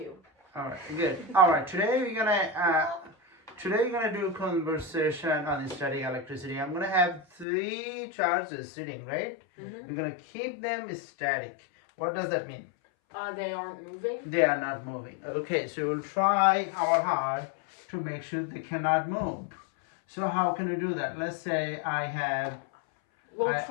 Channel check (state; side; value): drops out; right; at 7.5 s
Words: All right, good. All right, today we're gonna do conversation on static electricity. I'm gonna have 3 charges sitting, right? Mm-hmm. We're gonna keep them static. What does that mean? They aren't moving? They are not moving. Okay, so we'll try our hard to make sure they cannot move. So how can we do that? Let's say We'll